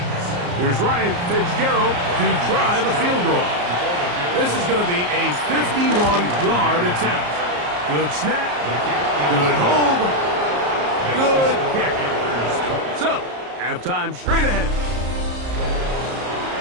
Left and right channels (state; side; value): late; left; 34 ms